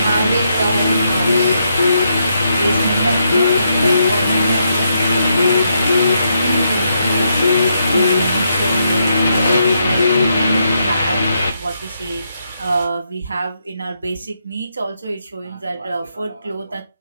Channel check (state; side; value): inverted; both; correlation -0.79